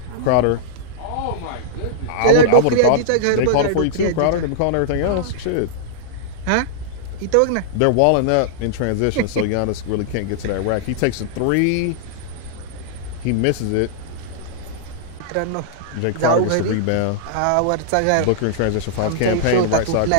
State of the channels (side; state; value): both; different; correlation -0.02